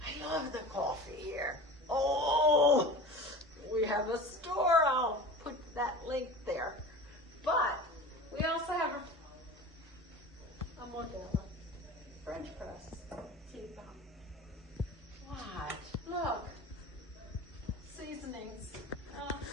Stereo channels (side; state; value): both; normal; correlation 0.36